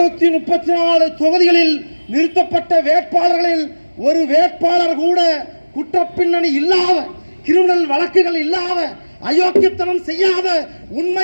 தொகுதிகளில் நிறுத்தப்பட்ட வேட்பாளர்களில் ஒரு வேட்பாளர் கூட குற்றப்பின்னணி இல்லாத, கிரிமினல் வழக்குகள் இல்லாத, அயோக்கியத்தனம் செய்யாத,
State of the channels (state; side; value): inverted; both; correlation -1.00